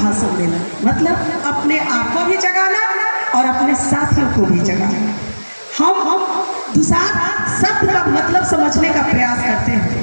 मतलब अपने आप को भी जगाना और अपने साथियों को भी जगाना। हम दुसाध शब्द का मतलब समझने का प्रयास करते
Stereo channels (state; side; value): inverted; both; correlation -1.00